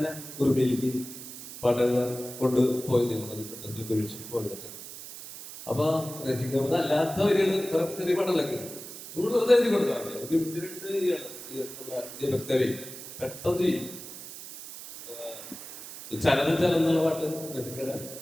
ഉറുമിയിലേക്ക് പാട്ടുകൾ കൊണ്ട് പോയി പോയതൊക്കെ. അപ്പൊ രചിക്കുന്നത് അല്ലാത്ത വരികൾ ചെറിയ പാട്ടുകളൊക്കെ നമ്മൾ വെറുതെ എഴുതി കൊടുത്താൽ മതി. ദീപക് ദേവ് പെട്ടെന്ന് ചെയ്യും. ചലനം എന്നുള്ള പാട്ട് രചിക്കയുടെ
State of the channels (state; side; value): noise; right; hiss, 12 dB below the sound